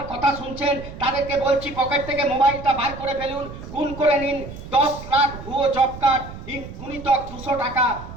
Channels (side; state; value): right; noise; rumble, 13 dB below the sound